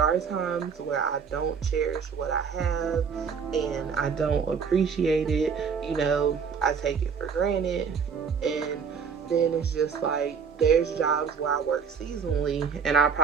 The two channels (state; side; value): quieter; left; 6.4 dB